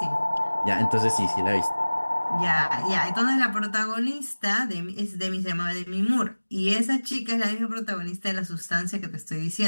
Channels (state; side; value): inverted; both; correlation -1.00